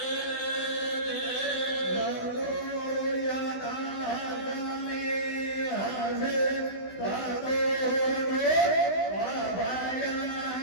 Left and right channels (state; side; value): late; right; 16 ms